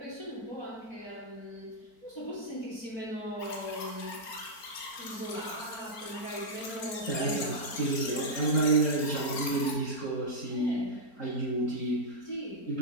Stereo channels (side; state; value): right; late; 4.4 ms